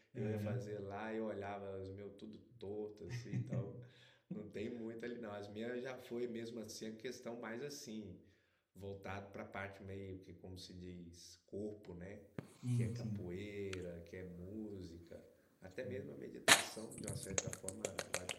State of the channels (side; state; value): both; identical; correlation 1.00